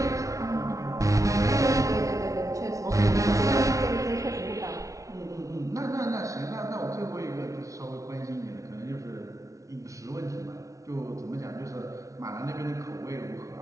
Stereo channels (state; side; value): late; left; 0.16 ms